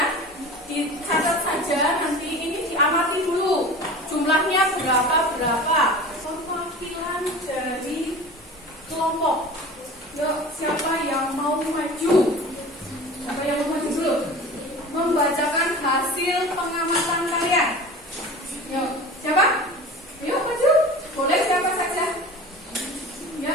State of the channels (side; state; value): both; normal; correlation 0.37